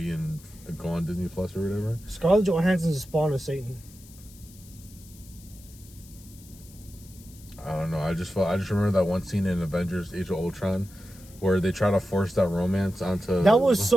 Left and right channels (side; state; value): left; noise; hiss, 22 dB below the sound